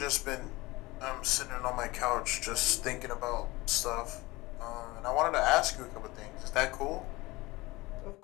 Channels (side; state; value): right; quieter; 21.3 dB